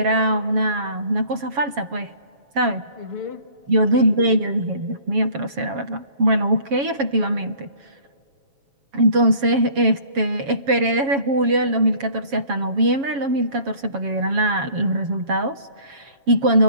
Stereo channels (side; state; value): left; late; 7.2 ms